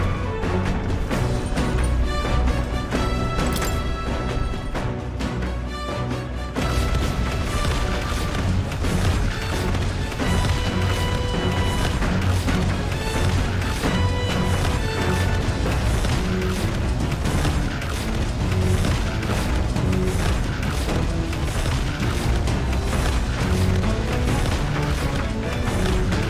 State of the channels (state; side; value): identical; both; correlation 1.00